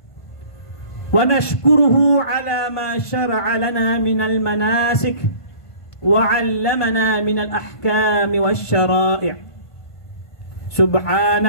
ونشكره على ما شرع لنا من المناسك وعلمنا من الأحكام والشرائع.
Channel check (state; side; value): late; right; 1.5 ms